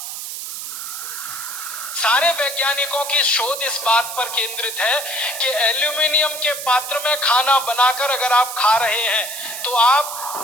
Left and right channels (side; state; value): right; noise; hiss, 7 dB below the sound